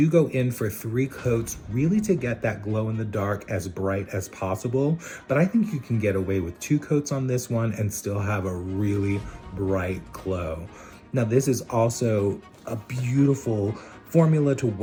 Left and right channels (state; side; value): identical; both; correlation 1.00